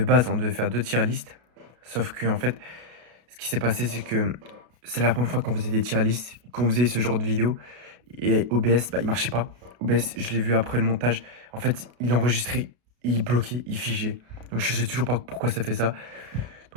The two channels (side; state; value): left; late; 33 ms